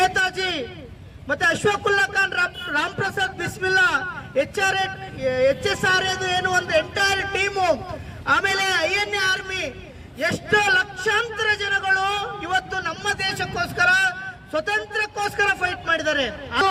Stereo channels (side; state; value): both; identical; correlation 1.00